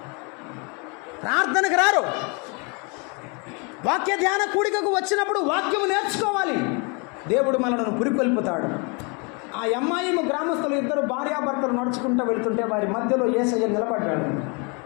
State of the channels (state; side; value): quieter; right; 32.1 dB